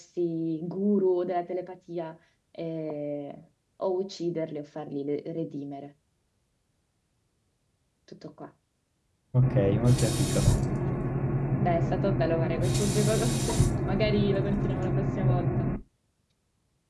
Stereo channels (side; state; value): both; identical; correlation 1.00